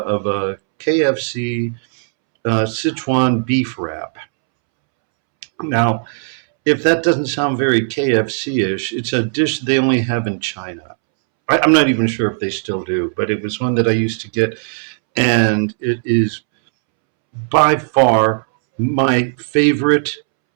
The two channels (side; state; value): left; silent; 68 dB below the other